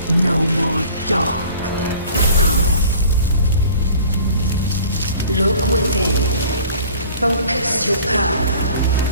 No more dark. Look within. Focus your power.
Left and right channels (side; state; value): both; inverted; correlation -0.48